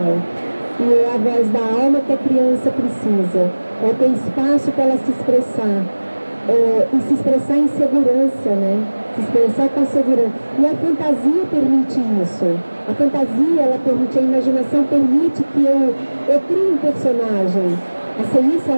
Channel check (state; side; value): inverted; both; correlation -1.00